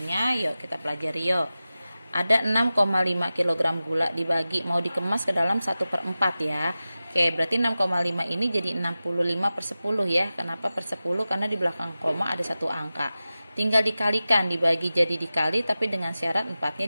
Yuk kita pelajari yuk. Ada 6,5 kg gula dibagi, mau dikemas ke dalam 1/4 ya. Oke, berarti 6,5 ini jadi 65/10 ya. Kenapa per 10? Karena di belakang koma ada satu angka. Tinggal dikalikan, dibagi jadi dikali, tapi dengan syarat 4-nya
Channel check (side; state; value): both; inverted; correlation -0.95